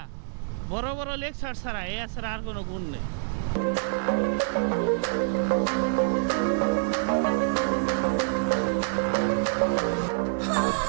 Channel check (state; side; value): silent; left; 60 dB below the other